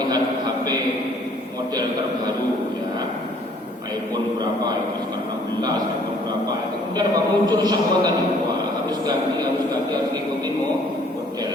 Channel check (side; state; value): both; normal; correlation 0.59